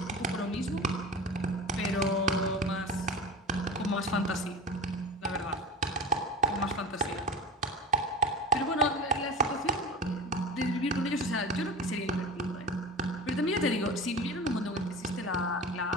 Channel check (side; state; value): both; normal; correlation 0.32